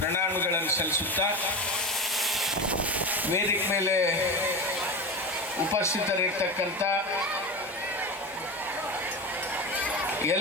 ಸಲ್ಲಿಸುತ್ತಾ, ವೇದಿಕೆ ಮೇಲೆ ಉಪಸ್ಥಿತರಿರ್ತಕ್ಕಂಥ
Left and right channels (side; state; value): both; normal; correlation 0.22